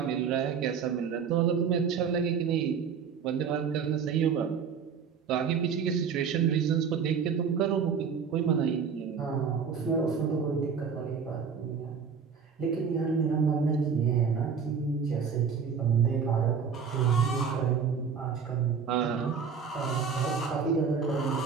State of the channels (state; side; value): quieter; left; 6.4 dB